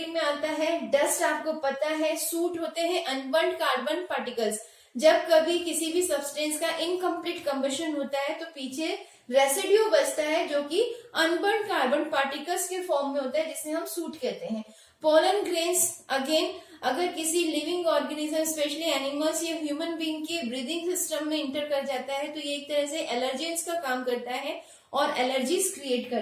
में आता है। डस्ट आपको पता है, सूट होते हैं अनबर्न्ड कार्बन पार्टिकल्स। जब कभी किसी भी सब्सटेंस का इनकम्प्लीट कंबशन होता है तो पीछे रेसिड्यू बचता है जो कि अनबर्न्ड कार्बन पार्टिकल्स के फॉर्म में होता है, जिसे हम सूट कहते हैं। पोलन ग्रेन्स अगेन अगर किसी लिविंग ऑर्गेनिज्म स्पेशली एनिमल्स या ह्यूमन बीइंग के ब्रीदिंग सिस्टम में इंटर कर जाता है तो ये एक तरह से एलर्जेंस का काम करता है और एलर्जीज क्रिएट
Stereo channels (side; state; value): both; identical; correlation 1.00